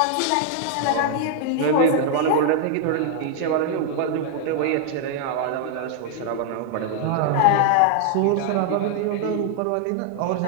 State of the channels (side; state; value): both; different; correlation 0.00